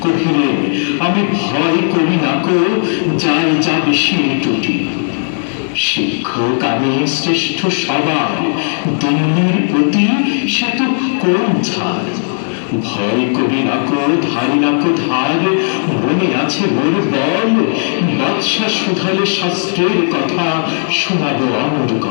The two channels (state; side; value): silent; right; 63 dB below the other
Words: কহিলেন আমি ভয় করি না কো, যাই যাবে সে টুটি। শিক্ষক আমি শ্রেষ্ঠ সবার, দিল্লির প্রতি সে তো কোন ছাড়। ভয় করি না কো ধারি না কো ধার, মনে আছে মোর বল। বাদশা শুধালে শাস্ত্রের কথা শোনাবো অমর